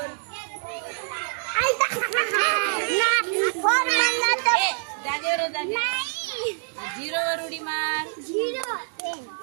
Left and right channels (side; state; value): left; silent; 61 dB below the other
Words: 4 जागेवर 0 वर उडी मार.